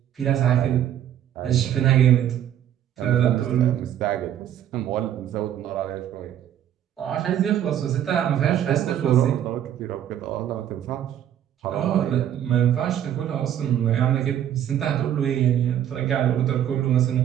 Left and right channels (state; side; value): quieter; left; 10.6 dB